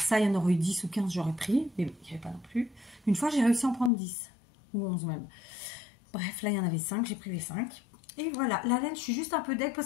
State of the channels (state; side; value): drops out; right; at 3.9 s